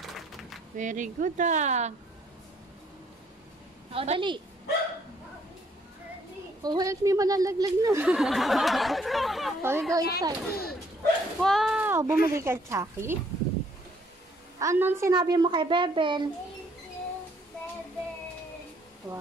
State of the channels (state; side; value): normal; both; correlation 0.65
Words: Very good ah. O, dali. Oh, help me, malalaglag na. Okay, go inside. Wow, bumili ka, Chucky. Anong sinabi mo kay Bebel? Thank you, Bebel.